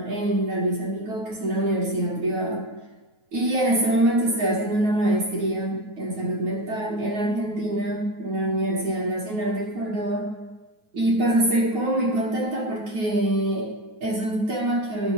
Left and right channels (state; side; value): late; left; 9.3 ms